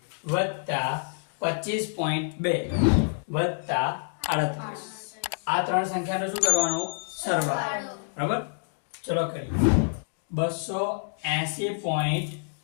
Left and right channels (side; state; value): right; silent; digital silence